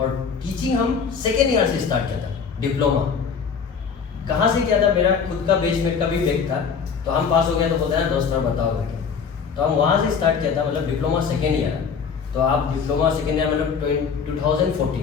टीचिंग हम सेकेंड ईयर से स्टार्ट किया था। डिप्लोमा कहाँ से किया था, मेरा खुद का बेसमेंट का भी बैक था, तो हम पास हो गया तो बोलते हैं ना दोस्त बताओ करके, तो हम वहाँ से स्टार्ट किया था, मतलब डिप्लोमा सेकेंड ईयर। तो आप डिप्लोमा सेकेंड ईयर मतलब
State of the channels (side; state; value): right; quieter; 6.2 dB